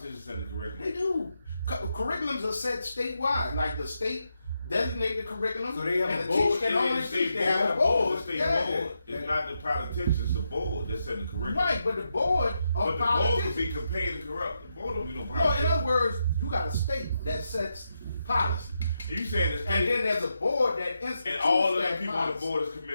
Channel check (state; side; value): inverted; both; correlation -0.84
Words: set the curriculum. They do. Curriculums are set statewide. Like the state designate the curriculum, So they have and a the board, teacher can only the teach. state They have a board. The state Yeah. board. It's not the politicians, the board that's setting the curriculum. Right, but the board But of the board will politicians. be compared and corrupt. The board don't be no No, politicians. in other words, you got a state that sets policy, And you saying the and state then there's a board that institutes and all of that the people on the policy. board